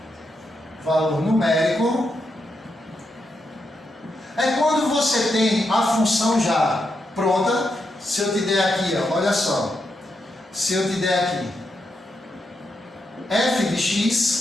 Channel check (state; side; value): normal; both; correlation 0.83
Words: Valor numérico é quando você tem a função já pronta. Se eu te der aqui, ó, olha só, se eu te der aqui f de